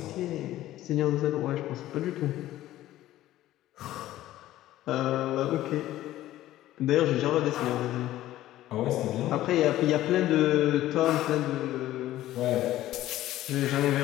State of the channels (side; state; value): right; quieter; 14.5 dB